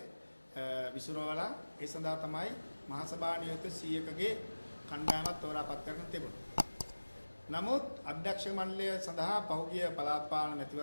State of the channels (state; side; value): inverted; both; correlation -1.00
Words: විසිරවලා ඒ සඳහා තමයි මහසභා නියෝජිත 100කගේ කණ්ඩායමක් තෝරාපත් කරගෙන තිබුණා. නමුත් අධ්‍යක්ෂක මණ්ඩලය සඳහා පහුගිය පළාත් පාලන